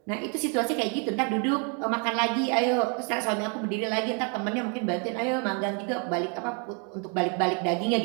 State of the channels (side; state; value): left; quieter; 36.8 dB